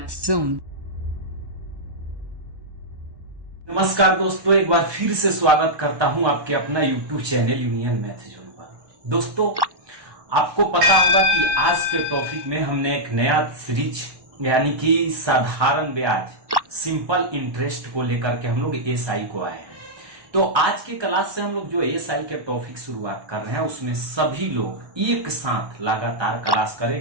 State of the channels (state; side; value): late; left; 1.1 ms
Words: Zone. नमस्कार दोस्तों, एक बार फिर से स्वागत करता हूं आपके अपना YouTube channel union maths zone पर। दोस्तों, आपको पता होगा कि आज के टॉपिक में हमने एक नया सीरीज यानी कि साधारण ब्याज सिंपल इंटरेस्ट को लेकर के हम लोग एसआई को आए हैं। तो आज की क्लास से हम लोग जो एसआई के टॉपिक शुरुआत कर रहे हैं उसमें सभी लोग एक साथ लगातार क्लास